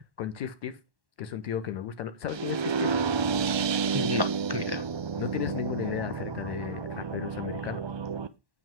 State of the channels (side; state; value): left; late; 1.3 ms